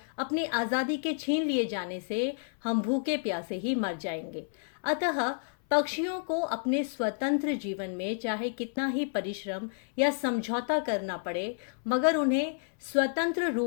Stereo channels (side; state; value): right; silent; 58 dB below the other